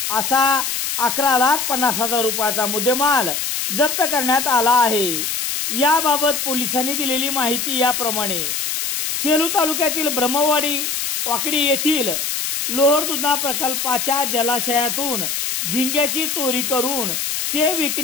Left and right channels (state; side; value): noise; left; hiss, 2 dB below the sound